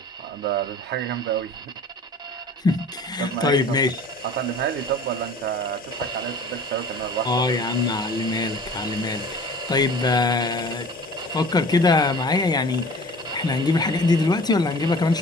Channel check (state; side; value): normal; both; correlation 0.44